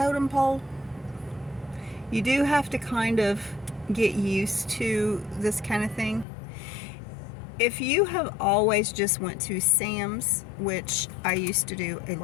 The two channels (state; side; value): drops out; right; at 6.2 s